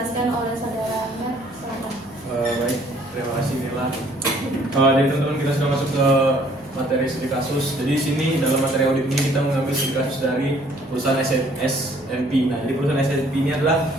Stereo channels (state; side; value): noise; right; rumble, 27 dB below the sound